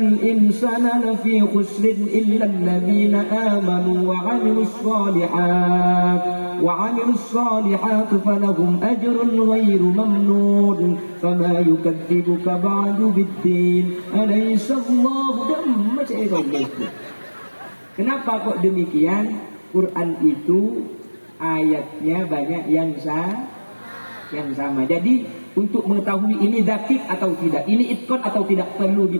insana lafi khusrin illa alladhina amanu wa 'amilus shalihat. Wa 'amilus shalihat falahum ajrun ghairu mamnun. Fama yukadzibuka ba'du bid-din. Alaysa Allahu damma syai'un. Kenapa kok demikian? Quran itu ayatnya banyak yang sama. Jadi untuk mengetahui ini dakik atau tidak, ini itqan atau tidak, perlu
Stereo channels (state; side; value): inverted; both; correlation -1.00